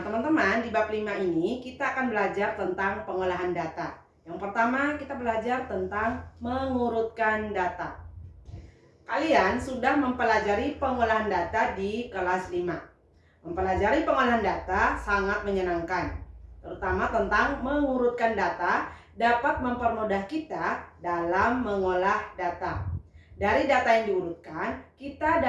teman-teman, di bab 5 ini kita akan belajar tentang pengolahan data. Yang pertama, kita belajar tentang mengurutkan data. Kalian sudah mempelajari pengolahan data di kelas 5. Mempelajari pengolahan data sangat menyenangkan, terutama tentang mengurutkan data dapat mempermudah kita dalam mengolah data. Dari data yang diurutkan, kita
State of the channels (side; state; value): both; identical; correlation 1.00